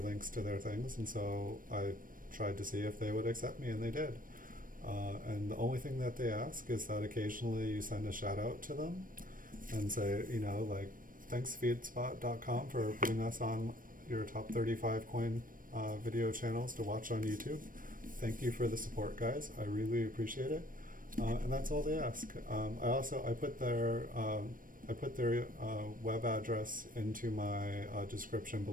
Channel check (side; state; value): left; late; 0.40 ms